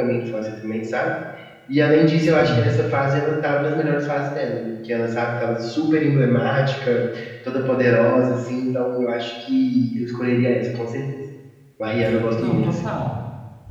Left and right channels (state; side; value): identical; both; correlation 1.00